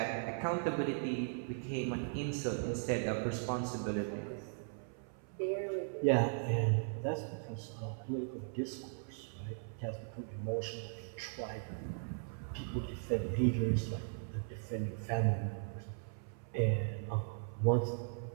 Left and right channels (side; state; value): left; silent; 52 dB below the other